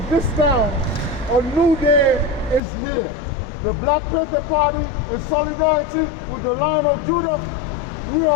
this town a new day is here. The Black Panther Party in solidarity with the Lion of Judah, we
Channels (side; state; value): right; drops out; at 2.6 s